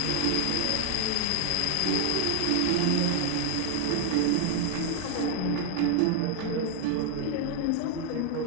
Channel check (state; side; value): different; both; correlation 0.00